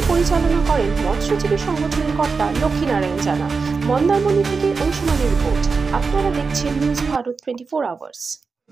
পরিচালনা করেন মৎস্যজীবী সংগঠনের কর্তা লক্ষ্মীনারায়ণ জানা। মন্দারমণি থেকে অংশুমানের রিপোর্ট। আপনারা দেখছেন নিউজ ভারত 24 আওয়ার্স।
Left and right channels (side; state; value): left; quieter; 4.7 dB